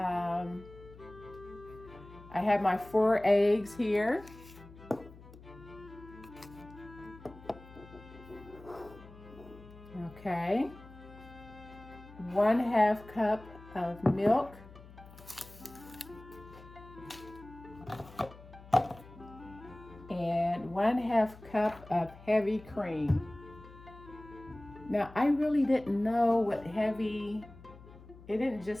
have my 4 eggs here. Okay. 1/2 cup of milk. And 1/2 cup of heavy cream. Now, I really didn't know what heavy, it didn't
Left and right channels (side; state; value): left; noise; hum, 19 dB below the sound